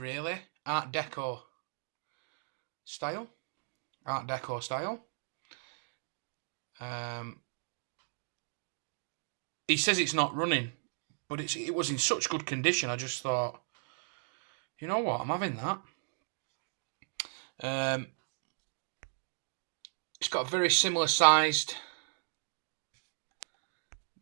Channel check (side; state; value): left; silent; digital silence